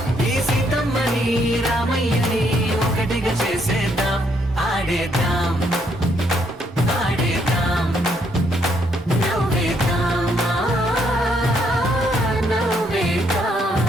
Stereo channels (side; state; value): both; normal; correlation 0.72